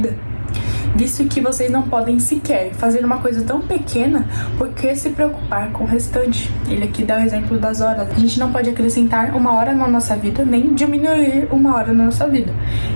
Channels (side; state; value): both; inverted; correlation -1.00